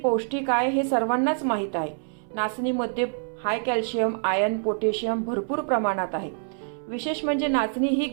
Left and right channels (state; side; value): silent; left; 61 dB below the other